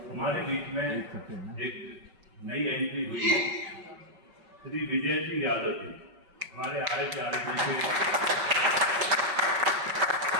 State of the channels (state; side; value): late; left; 5.3 ms